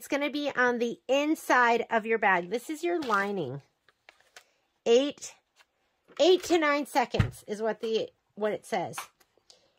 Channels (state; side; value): identical; both; correlation 1.00